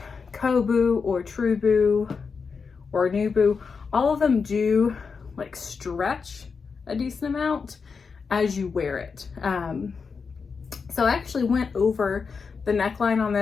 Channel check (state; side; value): quieter; right; 5.3 dB